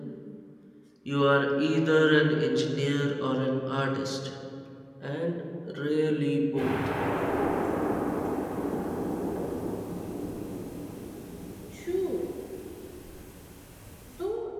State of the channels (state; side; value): identical; both; correlation 1.00